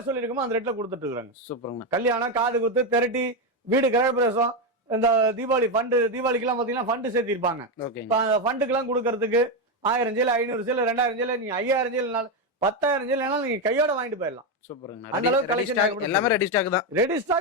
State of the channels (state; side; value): normal; both; correlation 0.08